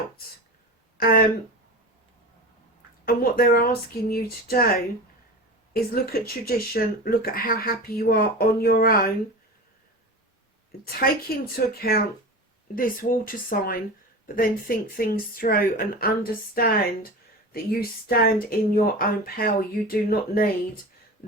and what they're asking you to do is look at tradition, look at how happy you are on your own, take into account this water sign, but then think things through and understand that you stand in your own power. You do not need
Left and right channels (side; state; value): both; normal; correlation 0.29